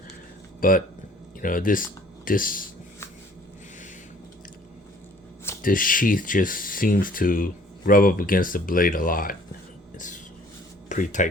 But this sheath just seems to rub up against the blade a lot. It's pretty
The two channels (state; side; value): normal; both; correlation 0.55